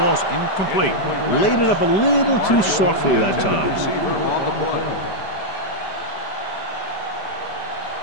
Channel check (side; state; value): right; late; 5.1 ms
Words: incomplete. Laid it up a little too softly that time.